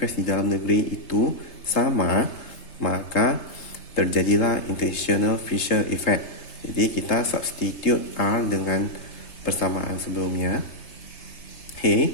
di dalam negeri itu sama, maka terjadilah international Fisher effect. Jadi kita substitute R dengan persamaan sebelumnya.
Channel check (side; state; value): right; late; 3.3 ms